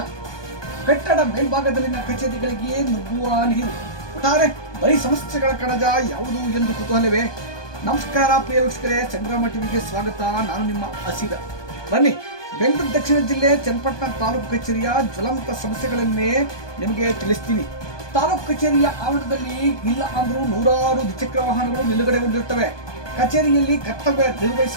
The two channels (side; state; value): right; late; 1.2 ms